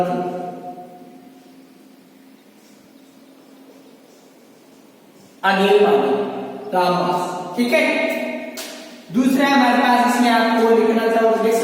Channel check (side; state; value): both; identical; correlation 1.00